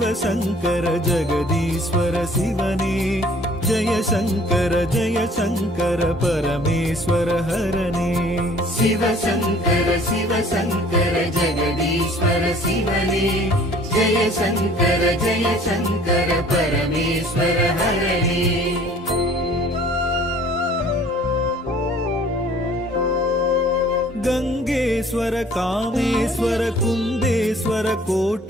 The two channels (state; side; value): normal; both; correlation 0.53